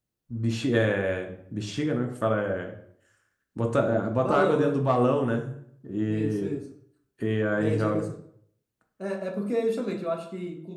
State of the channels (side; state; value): both; identical; correlation 1.00